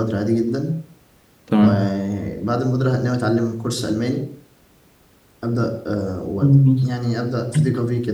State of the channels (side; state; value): both; identical; correlation 1.00